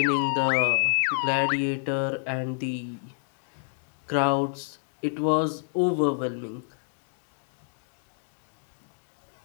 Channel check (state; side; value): silent; right; digital silence